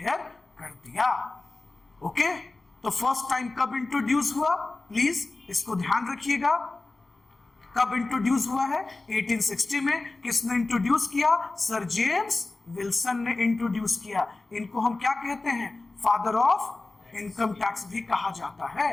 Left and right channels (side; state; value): right; quieter; 3.2 dB